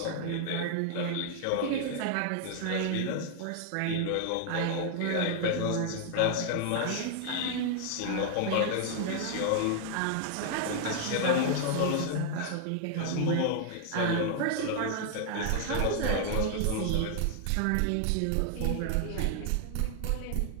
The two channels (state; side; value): different; both; correlation 0.00